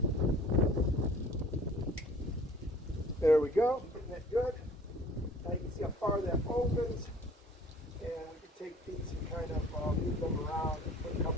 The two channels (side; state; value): both; normal; correlation 0.50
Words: There we go, getting that good. Now you can see how far that opens, and we can take these and kind of move them around and put a